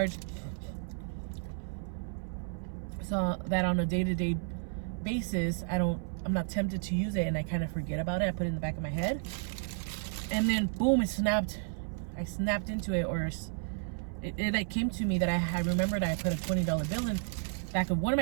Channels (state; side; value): silent; left; 56 dB below the other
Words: so that on a day-to-day basis, I'm not tempted to use it, and I kind of forget about it. I put it in the back of my head, and then boom, it snapped. I snapped into it, or it like came to me that I remembered I put a $20 bill in back of one of